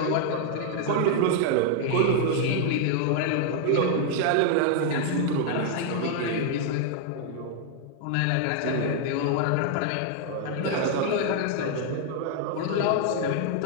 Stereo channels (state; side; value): different; both; correlation 0.00